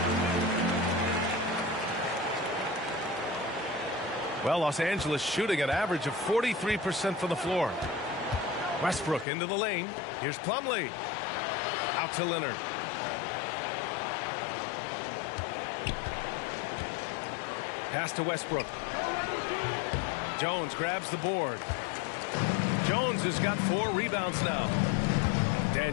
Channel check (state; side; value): drops out; right; at 9.2 s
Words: Well, Los Angeles shooting an average of 43% from the floor. Westbrook into the lane. Here's Plumlee. Out to Leonard. Pass to Westbrook. Jones grabs the board. Jones has got 4 rebounds now.